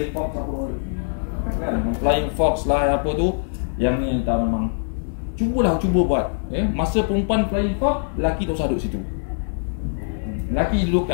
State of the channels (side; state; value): right; silent; 63 dB below the other